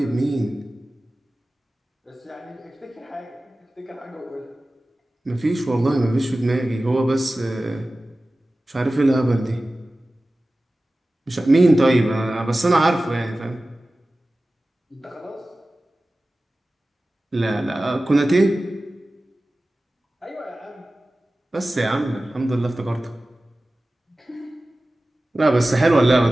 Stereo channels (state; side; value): normal; both; correlation 0.96